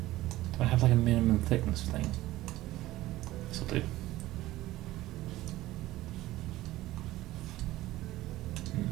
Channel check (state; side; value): quieter; left; 16.5 dB